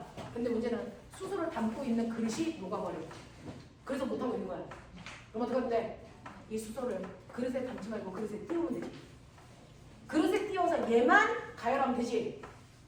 근데 문제는 수소를 담고 있는 그릇이 녹아버려. 그래서 못하고 있는 거야. 그럼 어떻게 하면 돼? 이 수소를 그릇에 담지 말고 그릇에 띄우면 되지. 그릇에 띄워서 얘만 가열하면 되지.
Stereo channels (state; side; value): identical; both; correlation 1.00